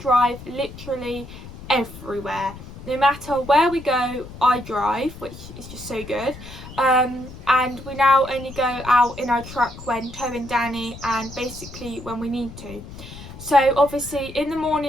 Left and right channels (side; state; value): left; noise; rumble, 14 dB below the sound